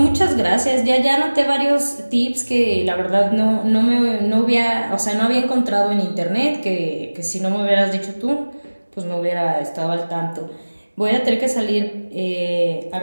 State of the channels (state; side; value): inverted; both; correlation -1.00